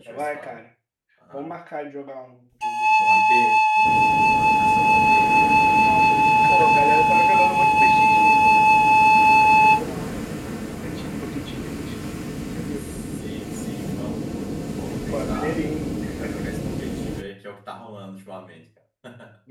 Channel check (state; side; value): identical; both; correlation 1.00